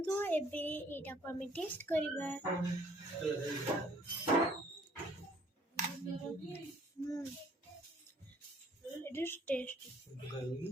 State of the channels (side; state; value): both; normal; correlation 0.60